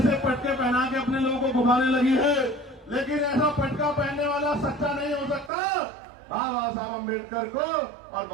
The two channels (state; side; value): drops out; left; at 5.5 s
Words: पटके पहना के अपने लोगों को घुमाने लगी है। लेकिन ऐसा पटका पहनने वाला सच्चा नहीं हो सकता। बाबा साहब अम्बेडकर को और